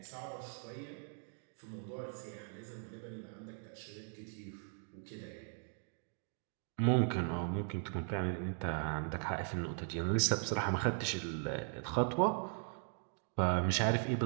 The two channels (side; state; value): left; silent; 52 dB below the other